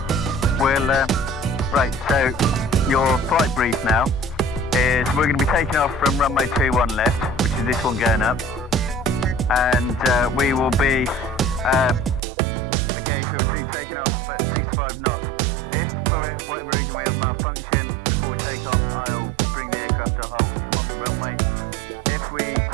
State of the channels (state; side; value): drops out; left; at 12.2 s